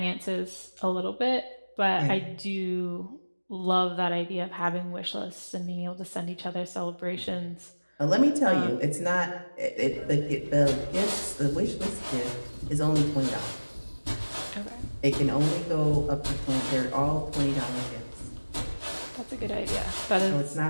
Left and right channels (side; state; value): both; inverted; correlation -1.00